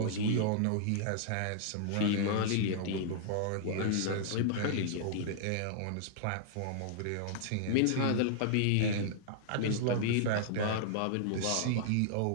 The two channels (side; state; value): both; different; correlation -0.01